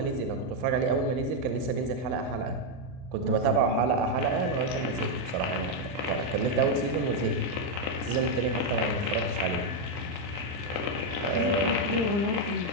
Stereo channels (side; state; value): left; late; 39 ms